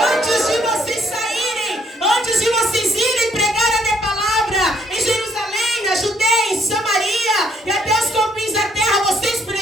Antes de vocês saírem, antes de vocês irem pregar a minha palavra em Jerusalém, na Judeia, em Samaria e até os confins da terra, vocês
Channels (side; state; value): both; normal; correlation 0.68